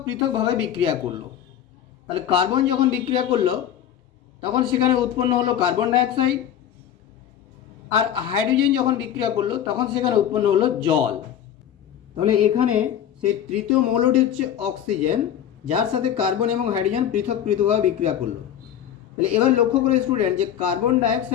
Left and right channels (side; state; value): right; quieter; 10.1 dB